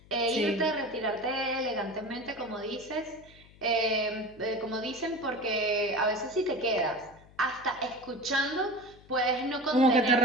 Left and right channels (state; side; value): noise; left; hum, 24 dB below the sound